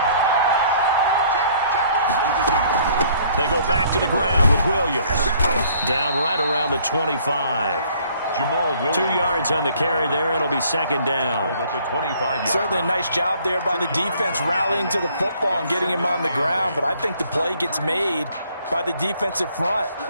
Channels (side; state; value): both; inverted; correlation -0.60